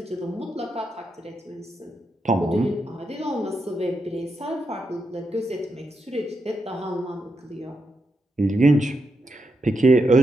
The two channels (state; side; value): normal; both; correlation 0.84